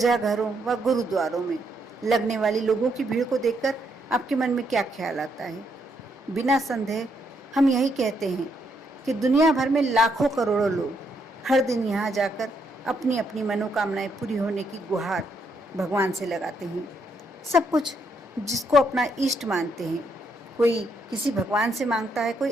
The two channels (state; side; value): normal; both; correlation 0.75